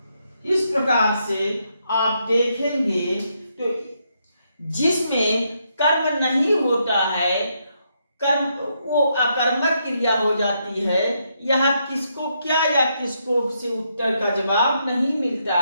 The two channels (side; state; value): both; inverted; correlation -0.78